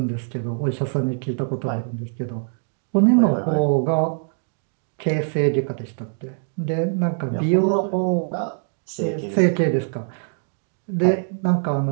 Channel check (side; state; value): left; silent; 58 dB below the other